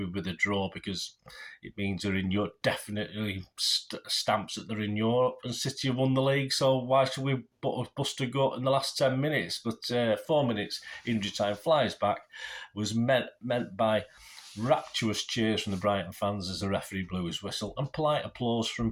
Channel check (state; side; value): identical; both; correlation 1.00